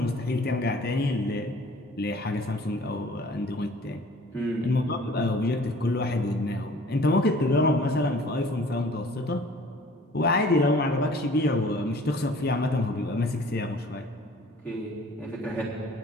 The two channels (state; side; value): normal; both; correlation 0.50